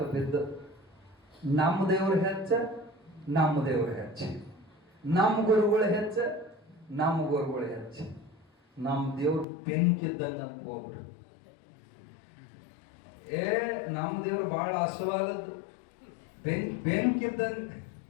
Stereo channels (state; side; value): drops out; right; at 9.5 s